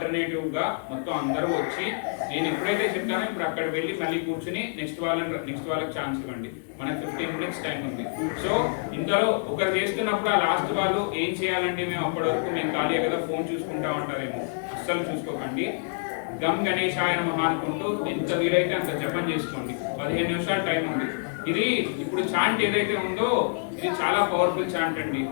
గా మొత్తం అందరూ వచ్చి నేను ఎప్పుడైతే చెప్తానో ఇప్పుడు అక్కడ వెళ్ళి మళ్ళీ కూర్చుని నెక్స్ట్ వాళ్ళకి ఛాన్స్ ఇవ్వండి. మనకి 15 minutes టైం ఉంది. సో ఇంతలో ఒకరు చేస్తున్నప్పుడు ఆ లాస్ట్ వాళ్ళు ఏం చేయాలండి, మేము అప్పటి వరకు మేము ఖాళీ కదా ఫోన్ చూసుకుంటా ఉంటారేమో, అస్సలు చూసుకోకండి. గమ్ గణేశాయ నమః అనుకుంటూ ఎంత వీలైతే అంత జపం చేసుకోండి. 15 నిమిషాలు టైం ఉంది. ఇది ఇప్పుడు చాంట్ ఏదైతే ఉందో ఇది చాలా పవర్ఫుల్ చాంట్ అండి.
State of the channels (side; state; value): right; silent; digital silence